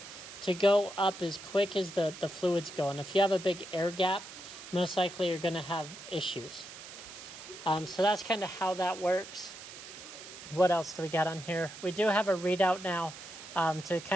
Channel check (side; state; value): right; noise; hiss, 14 dB below the sound